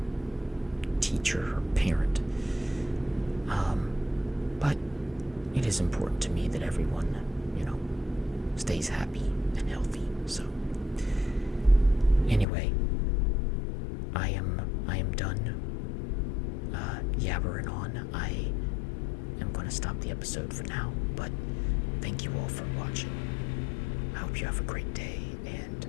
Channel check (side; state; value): right; drops out; at 12.5 s